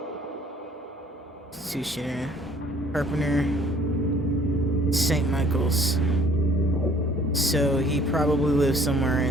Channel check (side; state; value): both; normal; correlation 0.57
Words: Institution, Carpenter, St. Michael's. So he probably lives somewhere